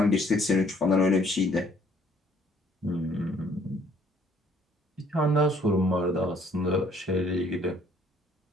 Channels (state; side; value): normal; both; correlation 0.61